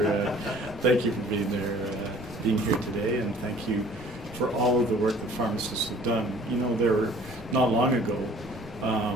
thank you for being there, being here today, and thank you for all of the work that pharmacists have done. You know, there not long ago,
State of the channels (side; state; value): right; noise; rumble, 19 dB below the sound